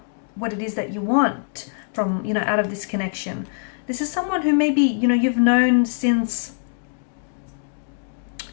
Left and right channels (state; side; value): silent; right; 63 dB below the other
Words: what it is that you want from, out of this connection. This is someone who maybe, you've known since,